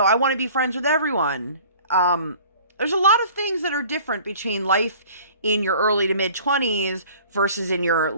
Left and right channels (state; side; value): inverted; both; correlation -0.48